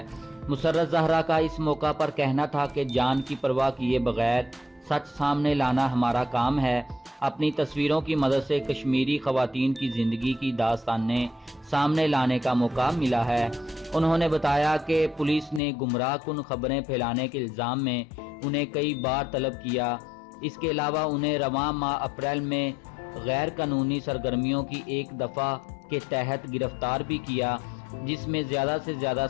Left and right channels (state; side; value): drops out; right; at 15.6 s